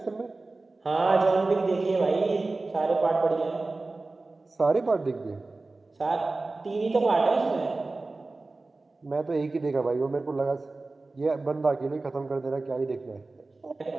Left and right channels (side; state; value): left; quieter; 3.4 dB